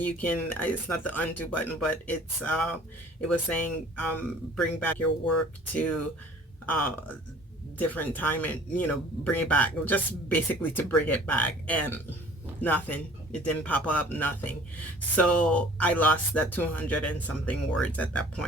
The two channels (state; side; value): normal; both; correlation 0.50